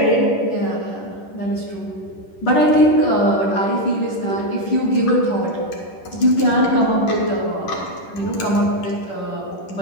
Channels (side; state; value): right; late; 10 ms